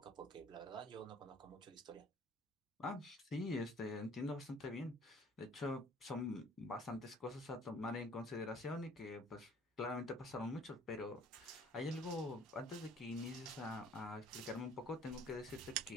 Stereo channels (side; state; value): both; normal; correlation 0.54